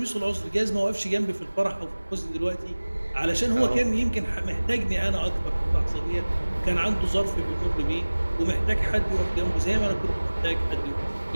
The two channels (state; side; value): inverted; both; correlation -1.00